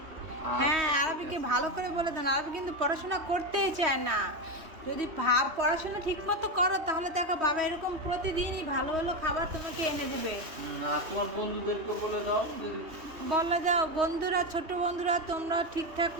হ্যাঁ, আরবিকে ভালো করে বলে দেন, আরবি কিন্তু পড়াশোনা করতেই চায় না। যদি পড়াশোনা ঠিক মতো করো তাহলে দেখো বাবা এরকম প্রতিদিনই ভালো ভালো খাবার তোমাকে এনে দেবে। আর তোমার বন্ধুদেরকে বলে দাও বলে দাও বন্ধুরা, ছোট বন্ধুরা তোমরা ঠিকঠাক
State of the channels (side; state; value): left; late; 3.2 ms